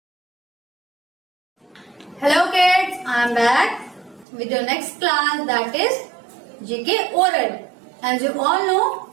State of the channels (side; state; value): left; drops out; at 4.2 s